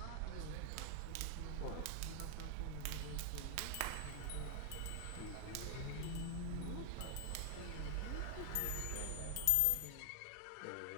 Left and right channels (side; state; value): both; different; correlation 0.00